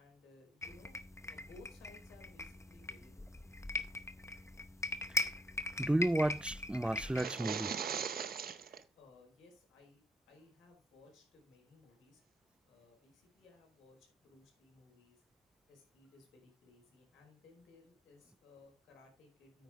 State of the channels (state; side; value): normal; both; correlation 0.68